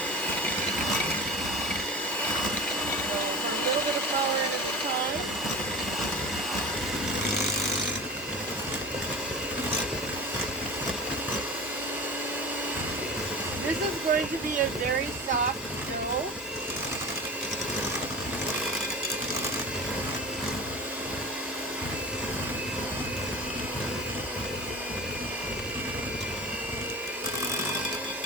a little bit of flour in at a time. This is going to be a very soft dough.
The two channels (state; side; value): normal; both; correlation 0.33